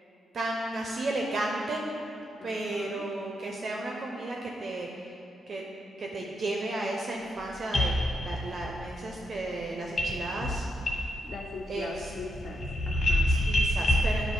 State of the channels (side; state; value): both; normal; correlation 0.81